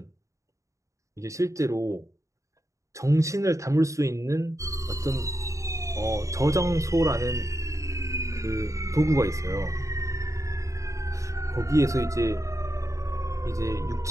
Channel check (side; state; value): left; late; 0.15 ms